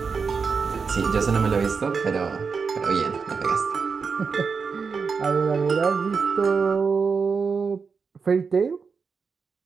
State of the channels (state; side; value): quieter; left; 5.3 dB